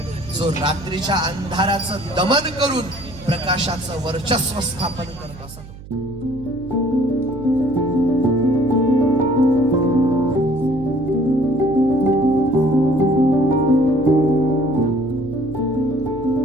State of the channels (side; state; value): right; noise; hum, 16 dB below the sound